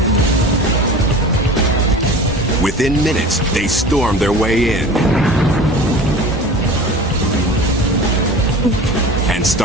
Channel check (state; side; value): normal; both; correlation 0.37